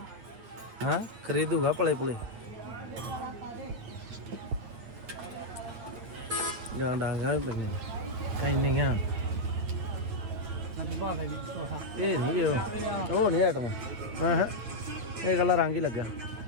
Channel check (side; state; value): left; late; 8.9 ms